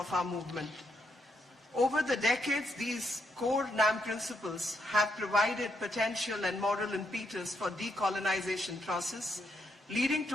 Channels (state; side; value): normal; both; correlation 0.78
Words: our movement. Over the decades, these core NAM principles have provided potential and moral impetus for decolonization process, leading